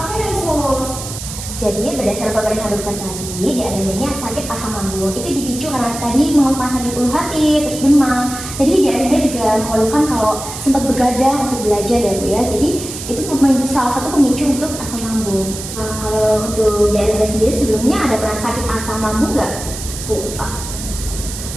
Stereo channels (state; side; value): noise; right; hiss, 9 dB below the sound